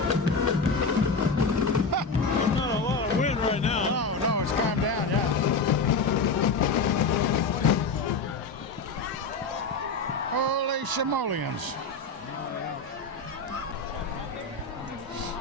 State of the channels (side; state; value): right; quieter; 4.0 dB